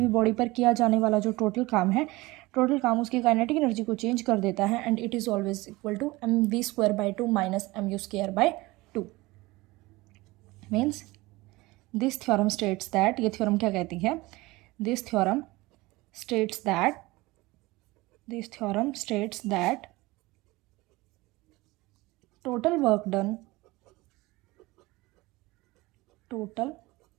बॉडी पर किया जाने वाला जो टोटल काम है, टोटल काम उसकी काइनेटिक एनर्जी को चेंज कर देता है, and it is always equal to m v square by 2 minus m u square by 2। Means this theorem states that, ये थ्योरम क्या कहती है? This theorem states that total work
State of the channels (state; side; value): quieter; left; 21.2 dB